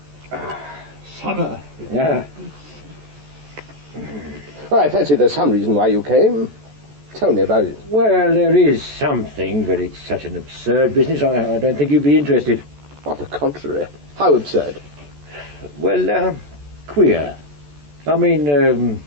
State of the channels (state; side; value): late; left; 14 ms